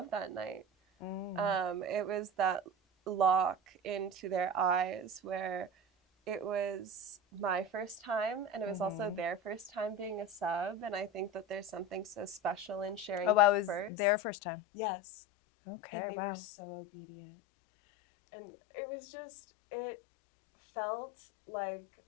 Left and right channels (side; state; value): right; drops out; at 13.9 s